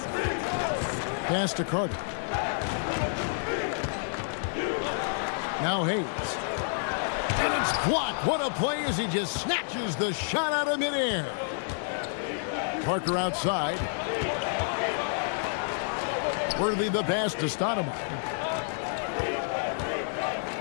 Pass to Carter. Now Hayes. And it's blocked. What a play as he just snatches the shot out of midair. Parker outside. Worthy the pass to Stoudemire.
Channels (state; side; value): silent; right; 58 dB below the other